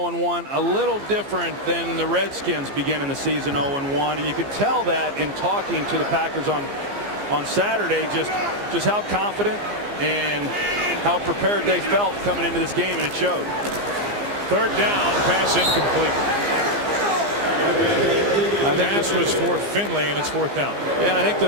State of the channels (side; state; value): left; late; 15 ms